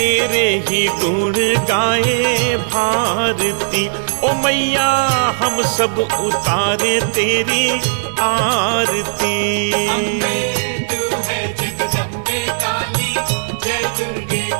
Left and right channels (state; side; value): silent; left; 68 dB below the other